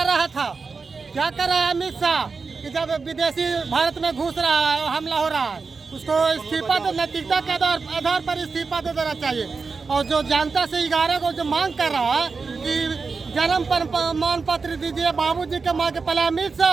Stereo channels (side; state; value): left; quieter; 4.6 dB